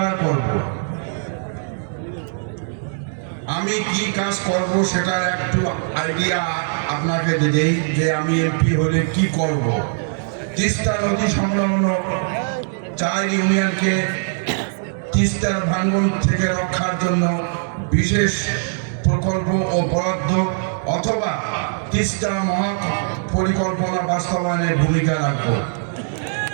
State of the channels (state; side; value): silent; left; 65 dB below the other